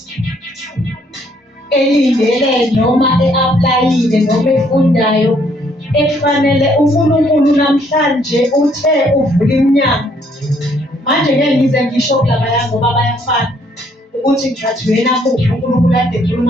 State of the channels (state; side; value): normal; both; correlation 0.67